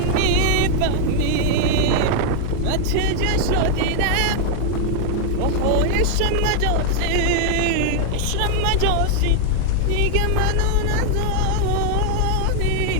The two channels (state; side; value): different; both; correlation 0.00